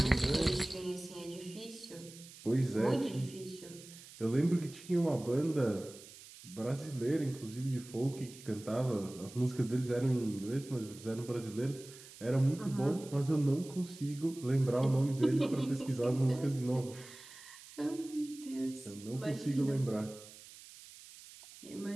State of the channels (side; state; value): right; noise; hiss, 18 dB below the sound